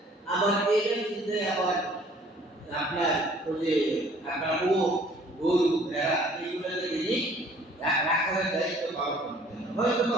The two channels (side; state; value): both; normal; correlation 0.56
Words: আবার এটা কিনতে আবার আপনার ওই যে আপনার গরু ভেড়া এইগুলোকে তিনি রাখার দায়িত্ব পালন করতেন। হয়তো বা